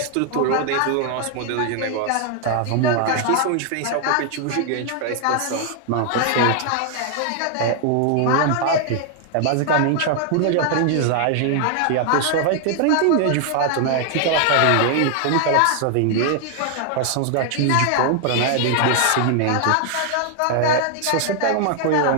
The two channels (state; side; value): different; both; correlation 0.00